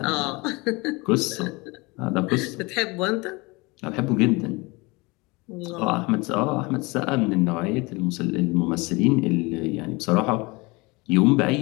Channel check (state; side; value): quieter; right; 25.2 dB